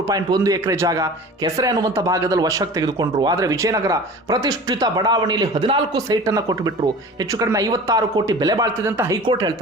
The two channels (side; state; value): both; normal; correlation 0.39